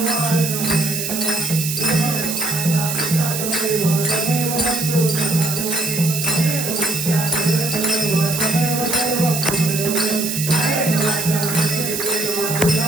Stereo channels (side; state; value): right; noise; hiss, 3 dB below the sound